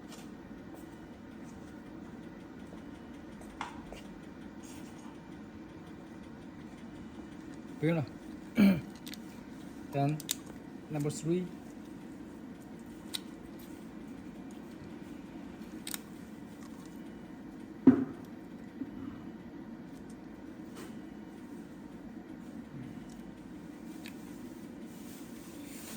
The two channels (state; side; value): identical; both; correlation 1.00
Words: 不用了。Then number 3.